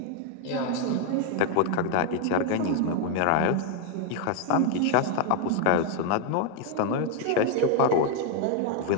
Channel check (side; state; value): both; different; correlation 0.01